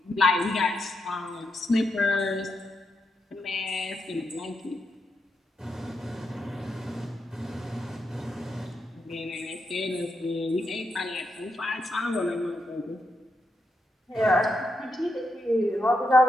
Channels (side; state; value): both; normal; correlation 0.83